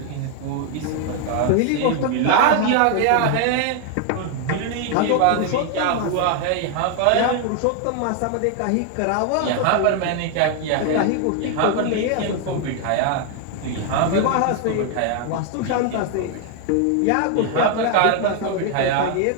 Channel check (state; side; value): different; both; correlation 0.00